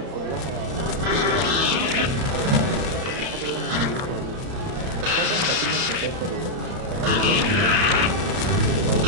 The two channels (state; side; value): late; left; 31 ms